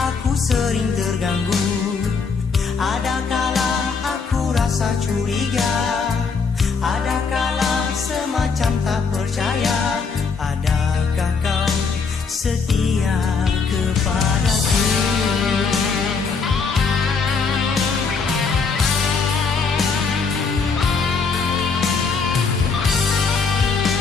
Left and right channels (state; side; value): quieter; right; 5.0 dB